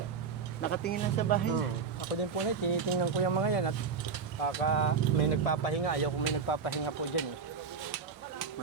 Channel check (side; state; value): left; quieter; 5.6 dB